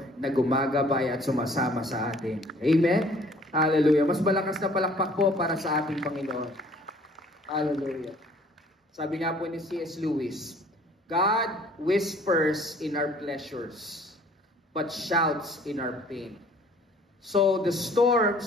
na gumagabay at sumasama sa atin. Amen? Hallelujah. Mas malakas na palakpak po para sa ating Panginoon. Hallelujah. Sabi nga po ni C.S. Lewis, "God whispers in our pleasures, but shouts in our pain." So, the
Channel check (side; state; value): both; normal; correlation 0.55